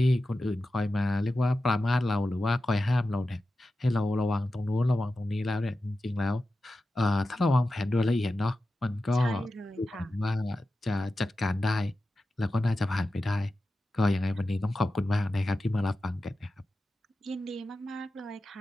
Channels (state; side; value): normal; both; correlation 0.92